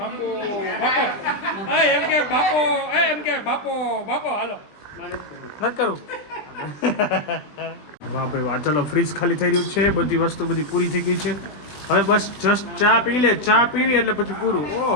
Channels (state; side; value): late; right; 20 ms